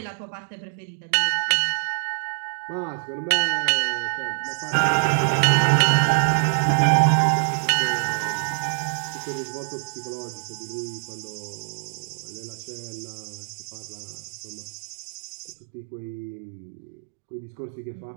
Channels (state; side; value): silent; left; digital silence